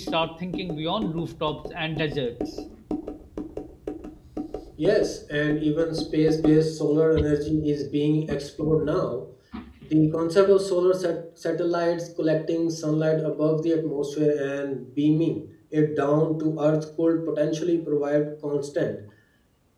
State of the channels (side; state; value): both; identical; correlation 1.00